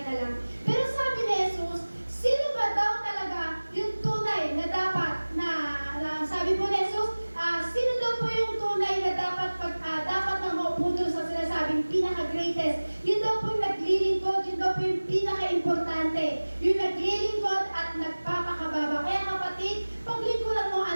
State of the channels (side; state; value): both; inverted; correlation -1.00